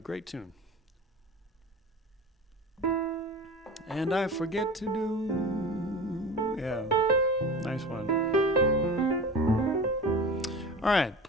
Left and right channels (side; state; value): both; normal; correlation 0.33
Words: tune. And I Forget to Do. Yeah, nice one. All right,